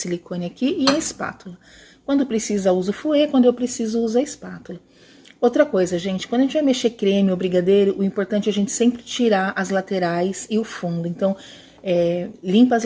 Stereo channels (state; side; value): identical; both; correlation 1.00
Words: aqui e a espátula. Quando precisa, uso o fouet, quando eu preciso, uso a espátula. Outra coisa, gente, quando a gente vai mexer creme ou brigadeiro, o importante é a gente sempre tirar as laterais e o fundo. Então, limpa as